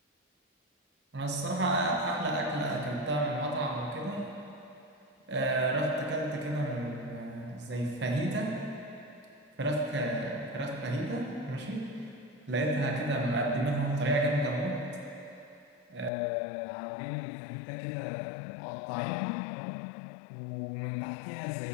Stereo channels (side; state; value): right; drops out; at 16.1 s